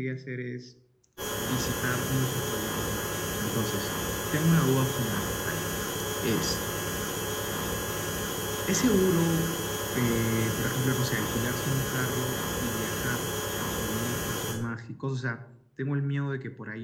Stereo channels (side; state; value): both; identical; correlation 1.00